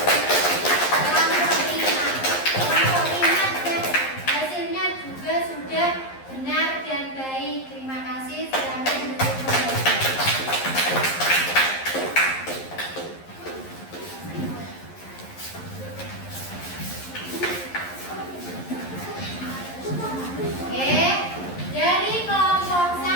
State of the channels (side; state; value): right; late; 11 ms